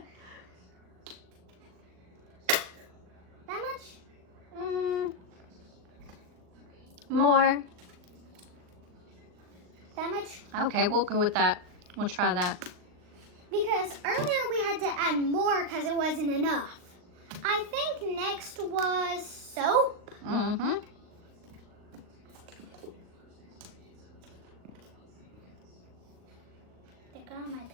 That much? More. That much? Okay, we'll go with that. We'll try that. Because earlier we had to add more because it wasn't enough. I think next was soap. Mm-hmm. They got on my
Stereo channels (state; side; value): late; left; 39 ms